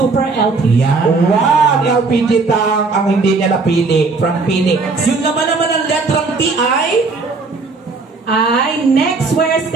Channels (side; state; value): left; quieter; 4.0 dB